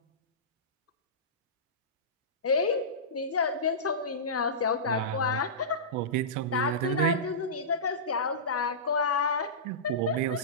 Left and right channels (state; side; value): normal; both; correlation -0.20